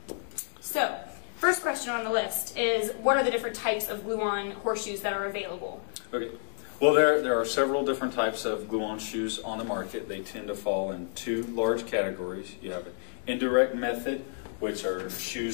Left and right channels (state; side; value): silent; right; digital silence